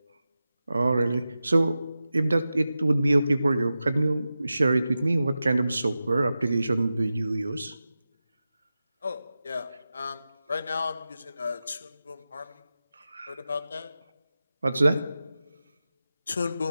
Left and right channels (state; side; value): inverted; both; correlation -0.93